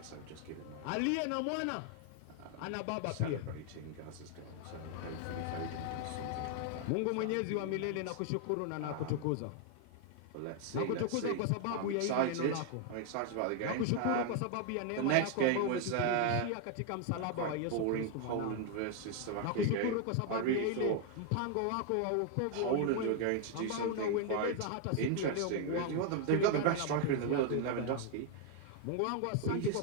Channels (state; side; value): different; both; correlation 0.00